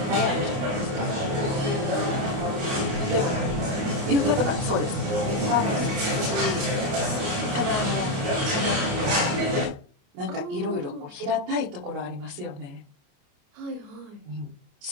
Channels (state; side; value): late; left; 29 ms